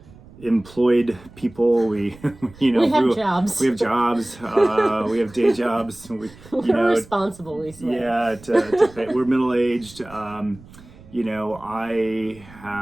employed people. We have jobs. We have jobs. We have day jobs. We're responsible, we swear. Yeah, to pay. We're middle-aged. You know, I'm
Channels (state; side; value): noise; right; rumble, 22 dB below the sound